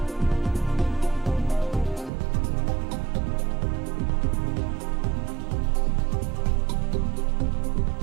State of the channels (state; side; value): drops out; left; at 2.1 s